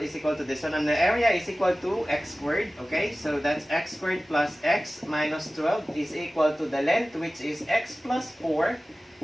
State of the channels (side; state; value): both; normal; correlation 0.97